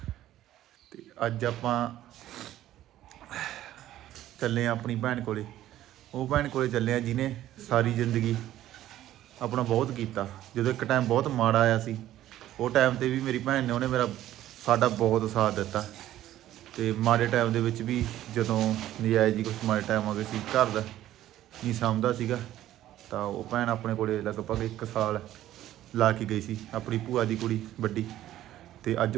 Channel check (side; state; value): left; quieter; 13.3 dB